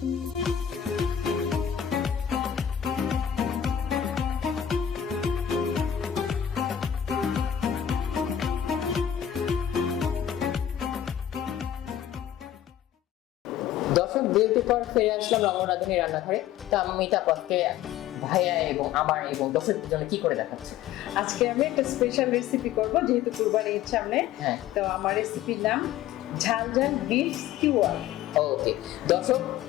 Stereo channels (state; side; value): quieter; right; 10.5 dB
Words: বিরতির পর ফিরে আসলাম রমন রাঁধুনি রান্নাঘরে। তো আমি তাপসকে ভাইয়া এবং আমার এবং দর্শকদের জন্য কি করে দেখাচ্ছে? আজকে আমি একটা স্পেশাল রেসিপি করব, যেহেতু কুরবানি ঈদ সামনে। তো আমার রেসিপির নাম ঝাল ঝাল বিফ স্কিওয়ার। ওকে দর্শক,